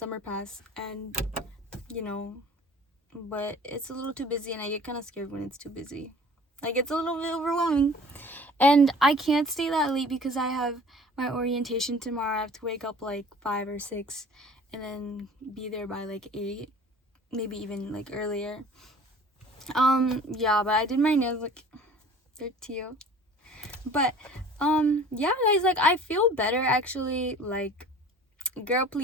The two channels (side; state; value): both; normal; correlation 0.46